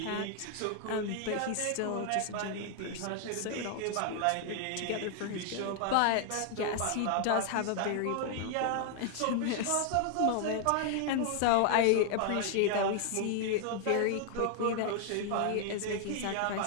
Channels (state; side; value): different; both; correlation 0.00